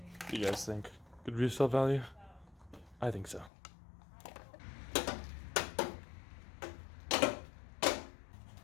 What do you guys think? Good resale value? I think so.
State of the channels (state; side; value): drops out; right; at 3.5 s